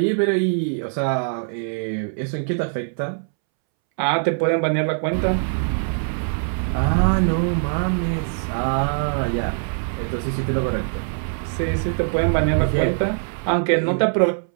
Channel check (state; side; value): silent; left; 64 dB below the other